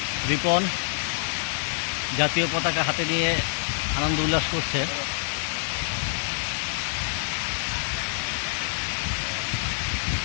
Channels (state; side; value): silent; right; 59 dB below the other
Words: রিপন জাতীয় পতাকা হাতে নিয়ে আনন্দ উল্লাস করছে।